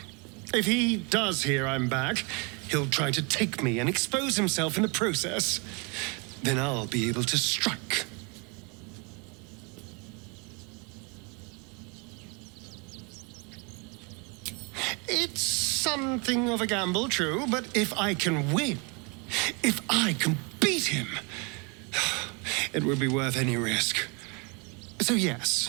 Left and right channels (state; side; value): quieter; left; 31.9 dB